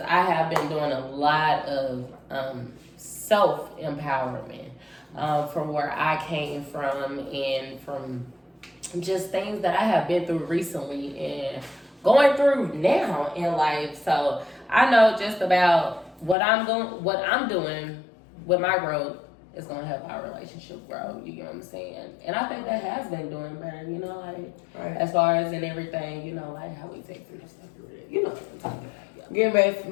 I have been doing a lot of self-empowerment from where I came from and from just things that I have been through recently and going through now in life. So I know just about what I'm doing with my growth is gonna help our relationship grow. You know what I'm saying? And I think that has been doing better. You know, like as far as in everything. You know, like how we take through stuff. You know what I'm talking about. Yeah. Get back to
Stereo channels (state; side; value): drops out; right; at 16.4 s